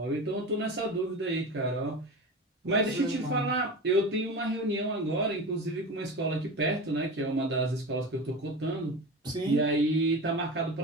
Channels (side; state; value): both; normal; correlation 0.29